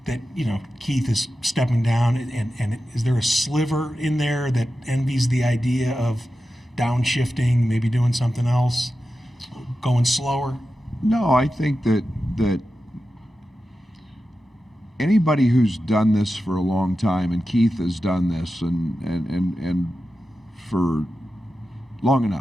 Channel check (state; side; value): normal; both; correlation 0.92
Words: that Keith is stepping down, and is there a sliver in there that envies the idea of downshifting, maybe doing something else, going slower? No, I think that anybody who's done this for a long time, and Keith has done this and for long